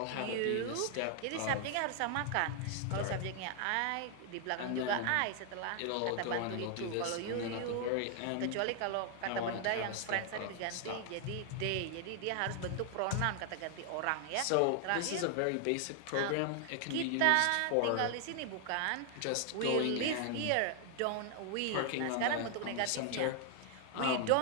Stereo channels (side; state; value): both; different; correlation 0.00